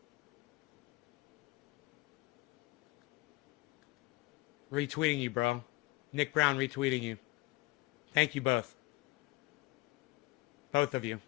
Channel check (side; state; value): right; quieter; 20.1 dB